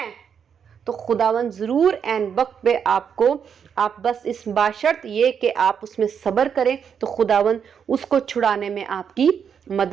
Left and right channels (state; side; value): quieter; left; 7.4 dB